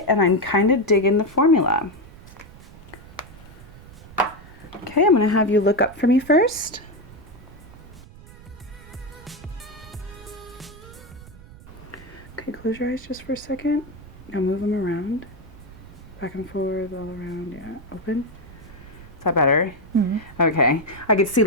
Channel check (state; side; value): noise; right; rumble, 19 dB below the sound